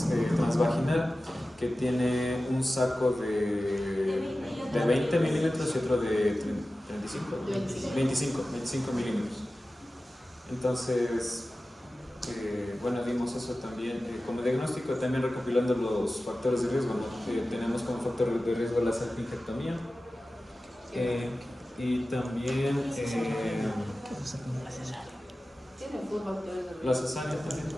transvaginal que tiene un saco de 20 milímetros y otro de 25 milímetros. Entonces, bueno, dimos eso también como diagnóstico, también recopilando los factores de riesgo, ¿no? Tenemos como factor de riesgo la salpingectomía y también Tiene full factores de la riesgo. cesárea también.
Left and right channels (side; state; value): both; normal; correlation 0.95